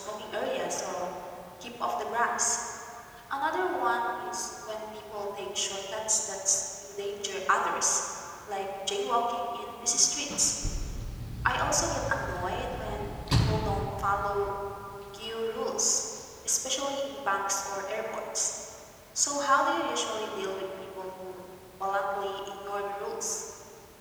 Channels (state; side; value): identical; both; correlation 1.00